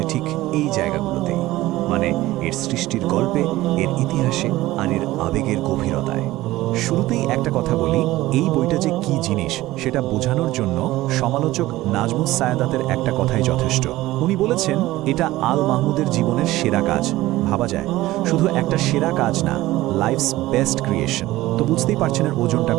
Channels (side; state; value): left; quieter; 17.1 dB